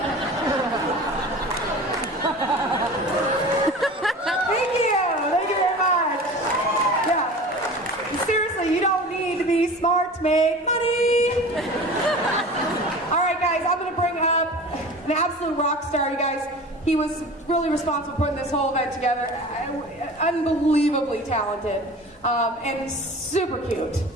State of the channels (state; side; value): normal; both; correlation 0.37